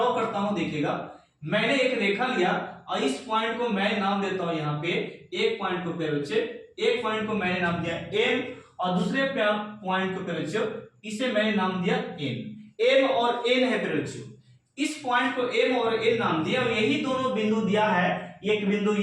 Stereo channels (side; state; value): both; identical; correlation 1.00